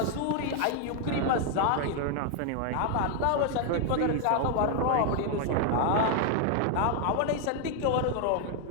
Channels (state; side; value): different; both; correlation 0.00